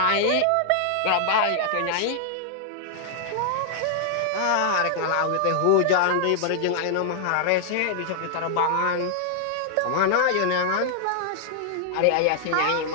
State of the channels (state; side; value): different; both; correlation 0.00